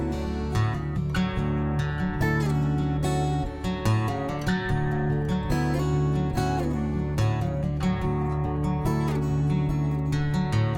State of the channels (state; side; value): identical; both; correlation 1.00